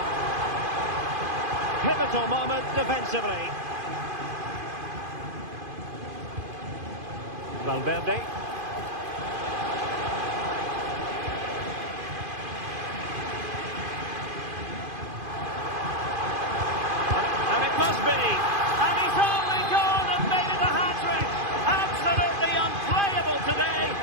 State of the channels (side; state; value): left; late; 2.5 ms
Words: Pivotal moment defensively. Valverde. Must be, and he's only gone and made it a hat-trick. Absolutely unplayable today.